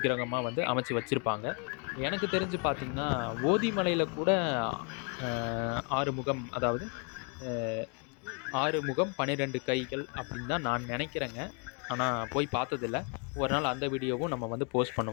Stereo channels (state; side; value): quieter; right; 37.3 dB